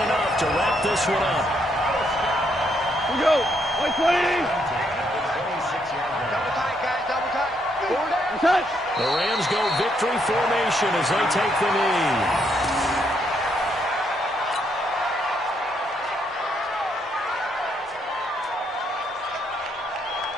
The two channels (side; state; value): both; normal; correlation 0.74